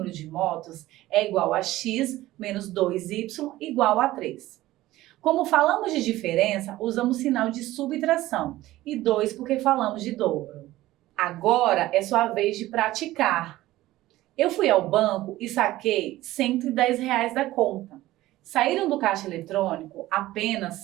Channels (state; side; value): quieter; left; 16.4 dB